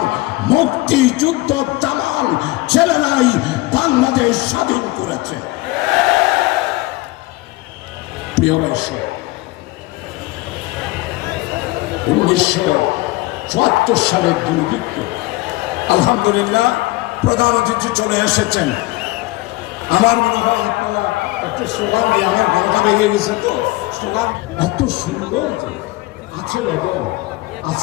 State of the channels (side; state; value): right; quieter; 20.2 dB